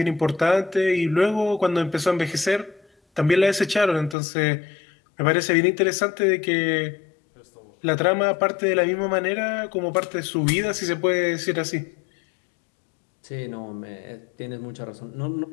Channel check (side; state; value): right; drops out; at 4.2 s